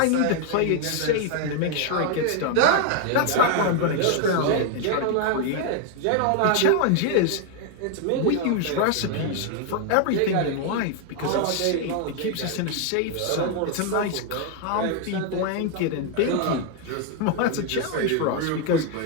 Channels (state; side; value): different; both; correlation 0.00